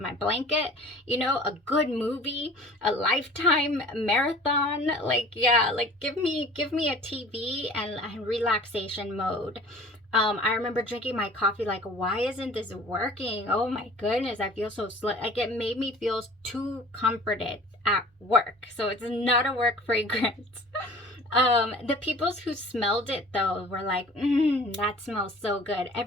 blanket, you know, a good movie, a Lifetime marathon. Like, yeah, like give me a TV and relaxation mode. I remember drinking my coffee like, why isn't this working? Oh my goodness, I feel so slow. Like, it made me feel too comforted at work. So it's not a work fragrance. The people who smelled it though were like, that smells so good.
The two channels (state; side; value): normal; both; correlation 0.45